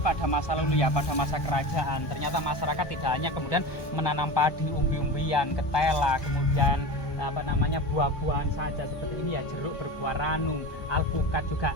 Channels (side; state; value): right; late; 1.2 ms